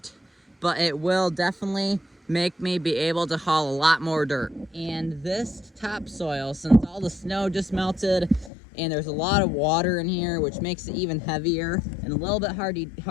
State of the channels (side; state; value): right; drops out; at 8.5 s